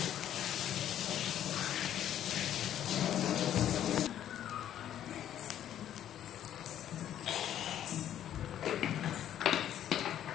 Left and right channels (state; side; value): quieter; right; 10.9 dB